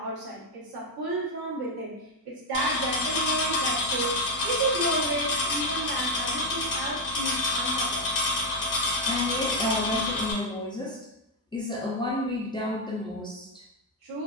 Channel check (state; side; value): normal; both; correlation 0.05